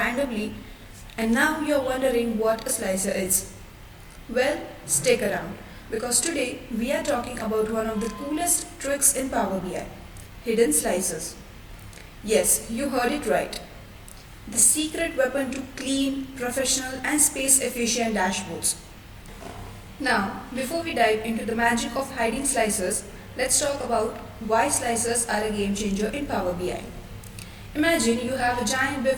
and now you're wondering what a slicer is. Well, stick around because today we are talking about one of the coolest tricks in Power BI, hidden slicers. Yes, you heard it right. The secret weapon to clean, professional and space efficient dashboards. Now, before we dive into the magic of hiding slicers, let's talk about why slicers are a game changer in Power BI. Imagine you have a giant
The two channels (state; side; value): identical; both; correlation 1.00